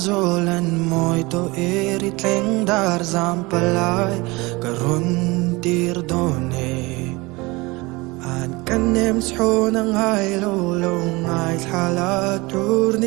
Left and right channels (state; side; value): quieter; left; 23.6 dB